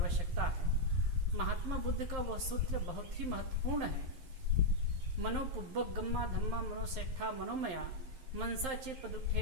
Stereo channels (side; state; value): left; late; 11 ms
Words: है। महात्मा बुद्ध का वह सूत्र बहुत ही महत्वपूर्ण है। मनो पुब्बक गम्मा धम्मा मनोसेठा मनोमया मनसा चे